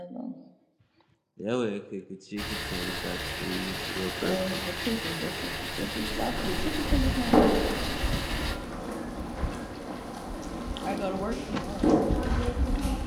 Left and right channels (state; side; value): identical; both; correlation 1.00